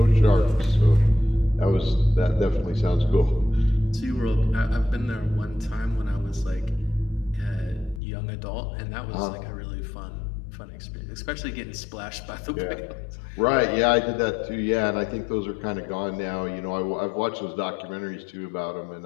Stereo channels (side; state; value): right; drops out; at 8.0 s